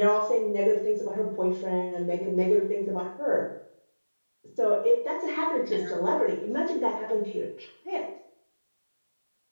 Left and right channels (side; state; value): both; inverted; correlation -1.00